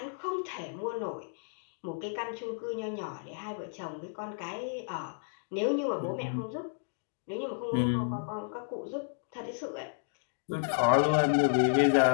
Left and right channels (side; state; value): right; silent; digital silence